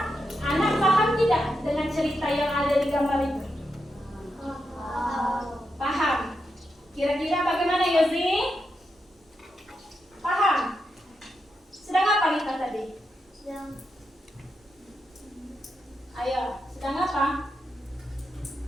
anak paham tidak dengan cerita yang ada di gambar itu? Paham. Kira-kira bagaimana Yozi? Paham? Sedang apa Lita tadi? Ayo, sedang apa?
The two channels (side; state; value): both; normal; correlation 0.85